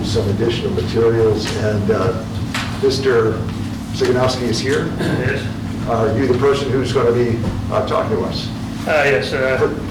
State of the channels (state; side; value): identical; both; correlation 1.00